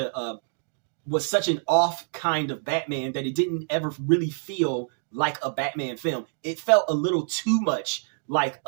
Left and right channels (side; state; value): left; silent; 61 dB below the other